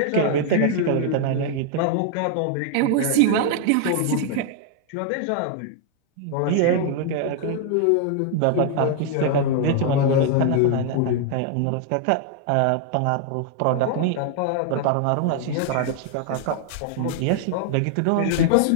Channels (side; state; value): both; different; correlation 0.00